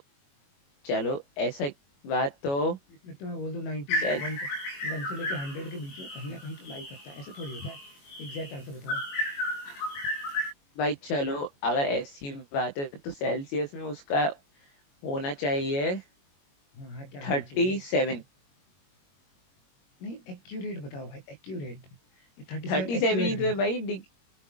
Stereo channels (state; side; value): late; right; 21 ms